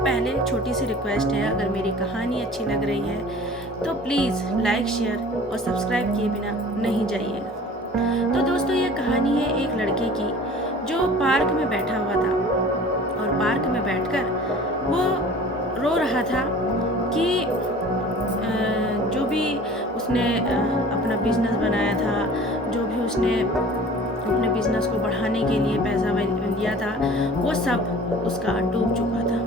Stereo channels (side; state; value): both; normal; correlation 0.44